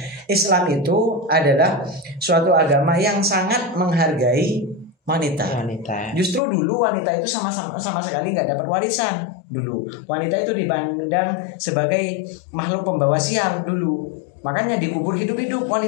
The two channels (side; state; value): right; drops out; at 6.4 s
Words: Islam itu adalah suatu agama yang sangat menghargai wanita. Justru dulu wanita itu sama sekali nggak dapat warisan dulu. Wanita itu dipandang sebagai makhluk pembawa sial dulu. Makanya dikubur hidup-hidup